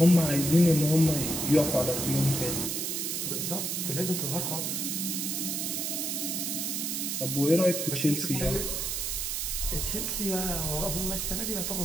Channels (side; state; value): right; noise; hiss, 1 dB below the sound